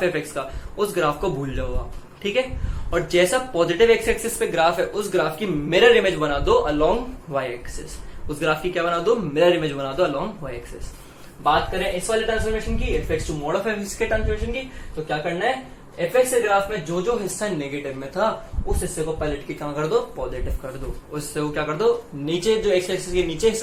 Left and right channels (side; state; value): both; identical; correlation 1.00